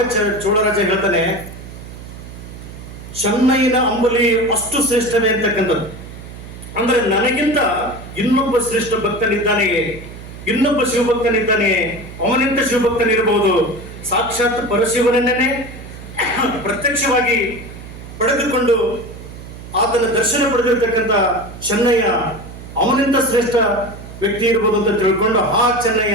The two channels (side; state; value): right; noise; hum, 14 dB below the sound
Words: ಚೋಳರಾಜ ಹೇಳ್ತಾನೆ, ಚೆನ್ನಯ್ಯನ ಅಂಬಲಿ ಅಷ್ಟು ಶ್ರೇಷ್ಠವೇ ಅಂತಕ್ಕಂಥದ್ದು. ಅಂದ್ರೆ ನನಗಿಂತ ಇನ್ನೊಬ್ಬ ಶ್ರೇಷ್ಠ ಭಕ್ತನಿದ್ದಾನೆಯೇ, ಇನ್ನೊಬ್ಬ ಶಿವಭಕ್ತನಿದ್ದಾನೆಯೇ, ಅವನಿಂದ ಶಿವಭಕ್ತನಿರಬಹುದು. ಸಾಕ್ಷಾತ್ ಪರಶಿವನನ್ನೇ ಪ್ರತ್ಯಕ್ಷವಾಗಿ ಪಡೆದುಕೊಂಡು ಆತನ ದರ್ಶನ ಪಡೆದಿರ್ತಕ್ಕಂಥ ಚೆನ್ನಯ್ಯ ಅವನಿಂದ ಶ್ರೇಷ್ಠ ವ್ಯಕ್ತಿ ಇರ್ಬೋದು ಅಂತ ತಿಳ್ಕೊಂಡು, ಹಾ